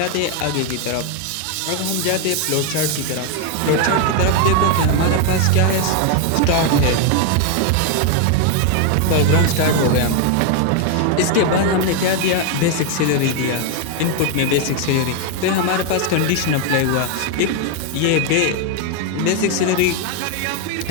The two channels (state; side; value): different; both; correlation 0.01